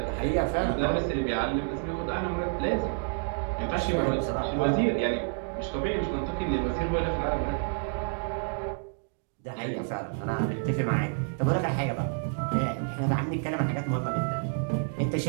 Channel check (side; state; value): left; silent; 59 dB below the other